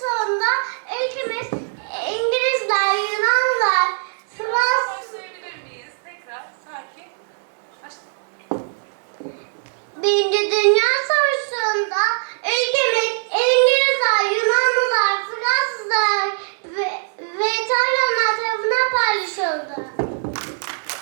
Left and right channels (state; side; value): silent; left; digital silence